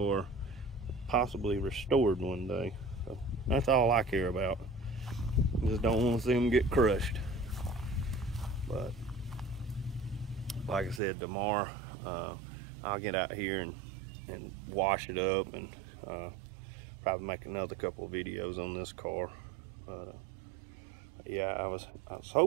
possibly restored one day. So that's all I care about. Just don't want to see them get crushed. But like I said, tomorrow I'll get out here and wash it up, and probably make another couple of videos on this car. But yeah, I was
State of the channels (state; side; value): drops out; left; at 11.0 s